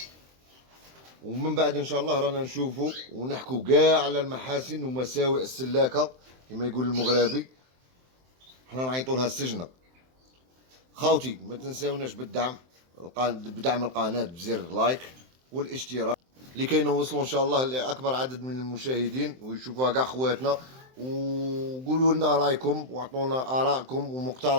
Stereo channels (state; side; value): late; left; 23 ms